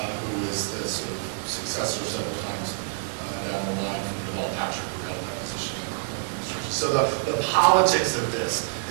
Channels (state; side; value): silent; left; digital silence